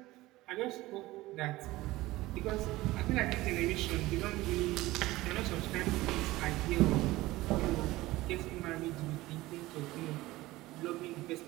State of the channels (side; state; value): left; quieter; 18.4 dB